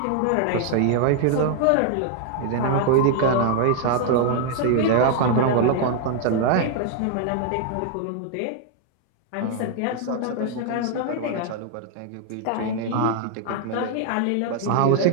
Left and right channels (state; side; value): different; both; correlation 0.00